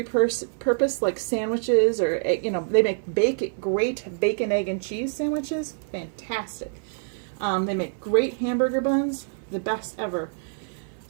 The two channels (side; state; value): left; silent; 59 dB below the other